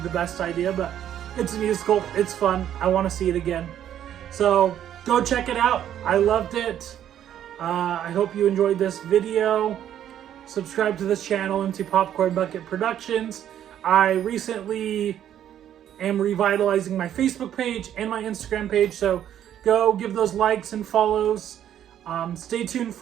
best idea, but it's a musical, it's fun, I want to see it again. So go check it out. I loved it. I hope you enjoyed this video. Subscribe to this channel, Empty Popcorn Bucket Productions. I recently am revitalizing my Facebook page and my Instagram page, so go give those likes and follows. Stay tuned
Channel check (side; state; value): left; quieter; 10.6 dB